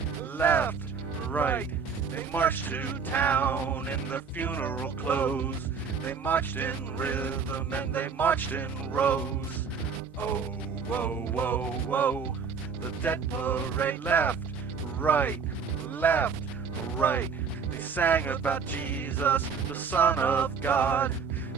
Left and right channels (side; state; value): left; quieter; 5.9 dB